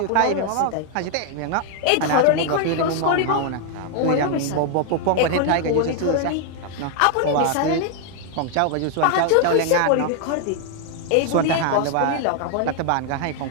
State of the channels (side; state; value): both; different; correlation 0.00